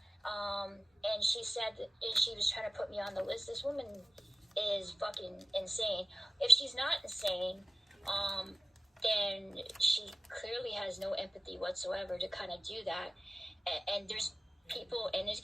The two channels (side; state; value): both; normal; correlation 0.95